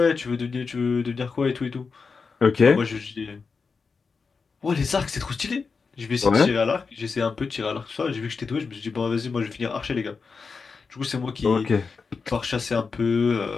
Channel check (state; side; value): quieter; right; 4.9 dB